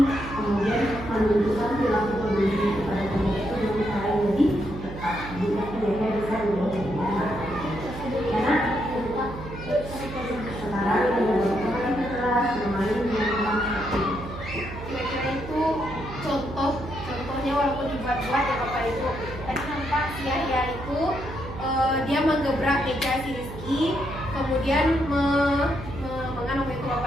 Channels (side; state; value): right; noise; hum, 11 dB below the sound